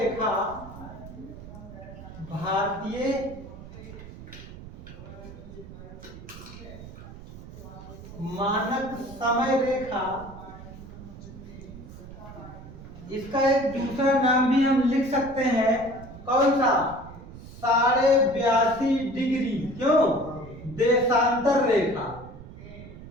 भारतीय मानक समय रेखा, इसका एक दूसरा नाम भी हम लिख सकते हैं, कौन सा? 82.5 डिग्री। क्यों? देशांतर रेखा।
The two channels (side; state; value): right; noise; rumble, 15 dB below the sound